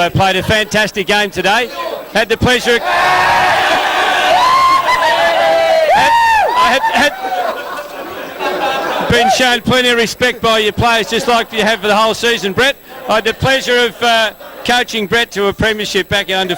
played a fantastic game today. Had the pleasure of... had been shown plenty of respect by your players, just like you have for the whole season, Brett. I had the pleasure of coaching Brett to a premiership back in under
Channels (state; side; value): identical; both; correlation 1.00